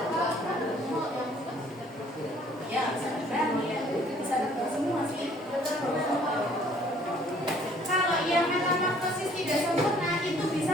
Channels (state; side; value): normal; both; correlation 0.58